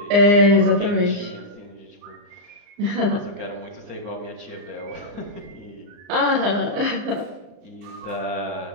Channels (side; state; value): left; late; 34 ms